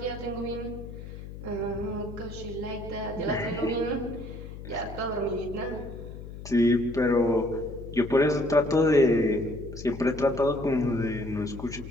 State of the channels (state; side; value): noise; left; hum, 12 dB below the sound